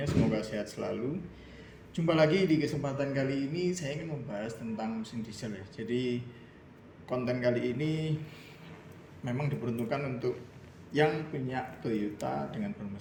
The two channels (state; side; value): identical; both; correlation 1.00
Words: Semoga sehat selalu. Jumpa lagi di kesempatan kali ini, saya ingin membahas tentang mesin diesel ya. Jadi konten kali ini memang diperuntukkan untuk yang punya Toyota dengan